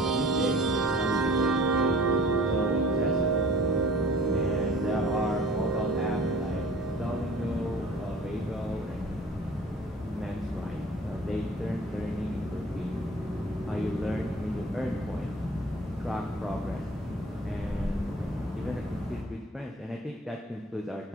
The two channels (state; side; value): normal; both; correlation 0.47